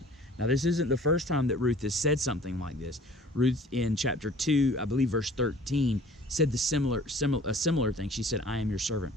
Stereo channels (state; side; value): normal; both; correlation 0.49